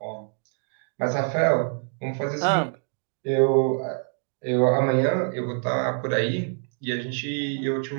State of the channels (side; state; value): left; silent; 61 dB below the other